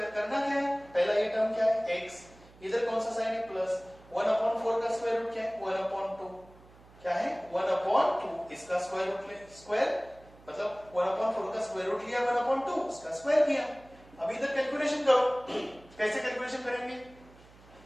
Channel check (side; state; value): right; noise; hum, 24 dB below the sound